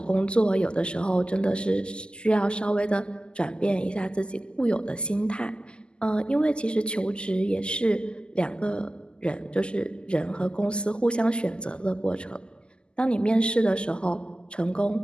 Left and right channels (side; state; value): right; late; 0.049 ms